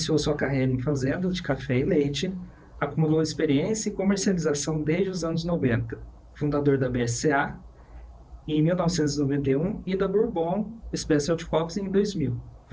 sua carreira em fazenda de café e leite, acumulou experiência em comercialização desde os anos 90, fundador da BSA em 1991 e da Bourbon Specialty Coffees em 2000.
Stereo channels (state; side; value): identical; both; correlation 1.00